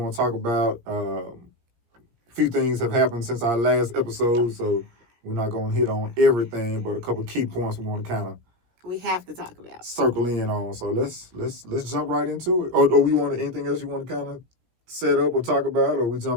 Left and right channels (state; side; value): late; left; 17 ms